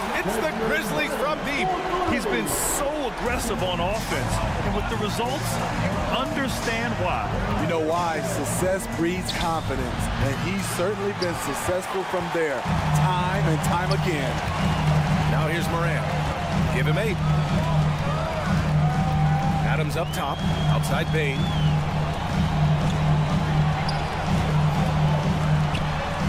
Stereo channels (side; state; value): both; identical; correlation 1.00